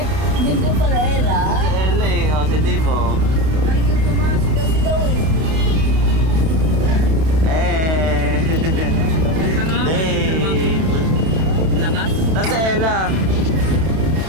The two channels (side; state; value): left; late; 32 ms